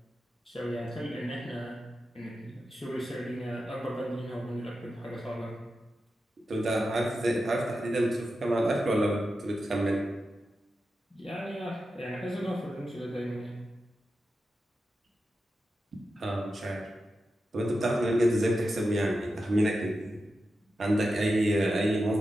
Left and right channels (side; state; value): both; normal; correlation 0.90